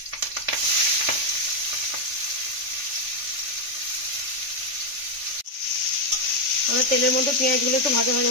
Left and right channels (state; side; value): late; left; 3.4 ms